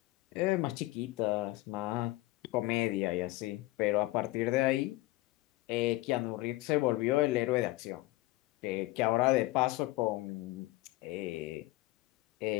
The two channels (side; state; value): right; quieter; 19.3 dB